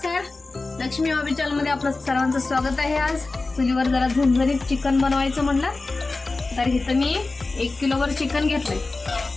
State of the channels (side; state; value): right; quieter; 3.5 dB